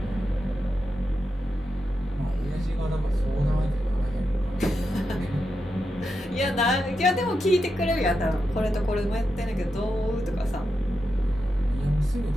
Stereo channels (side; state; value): both; normal; correlation 0.87